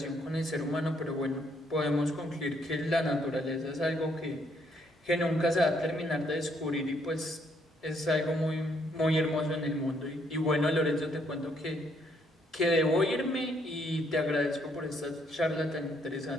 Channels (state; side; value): normal; both; correlation 0.70